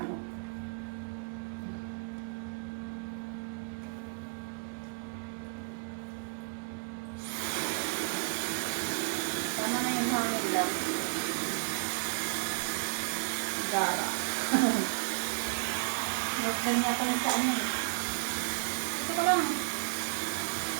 no? Tama na yung hangin lang. Gara. Nagdan niya pa yung sa ano eh. Ito ko lang.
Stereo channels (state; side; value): silent; left; digital silence